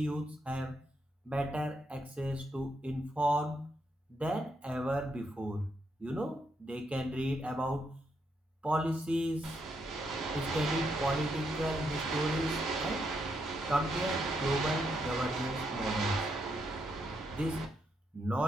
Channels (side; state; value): both; normal; correlation 0.78